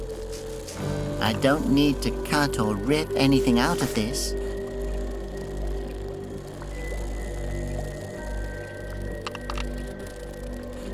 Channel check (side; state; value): both; identical; correlation 1.00